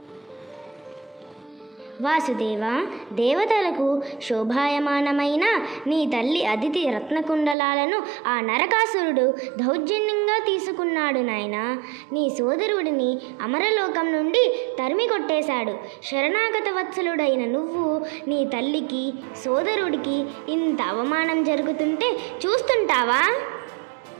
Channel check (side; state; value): left; drops out; at 7.6 s